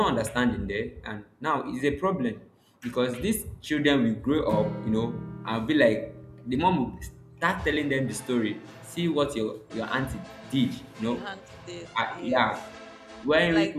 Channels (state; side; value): identical; both; correlation 1.00